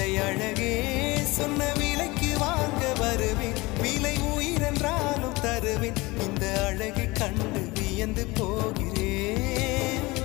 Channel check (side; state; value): right; quieter; 22.5 dB